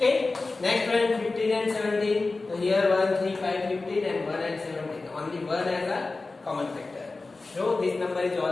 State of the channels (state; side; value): quieter; right; 3.5 dB